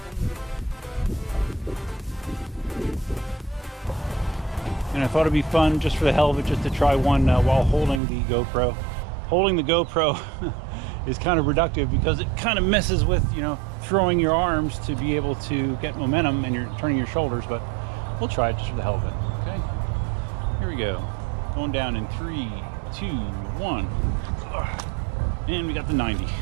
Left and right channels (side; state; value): left; drops out; at 8.0 s